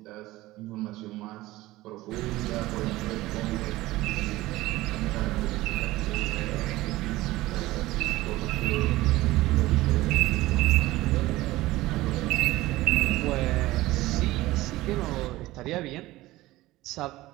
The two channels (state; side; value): quieter; left; 17.9 dB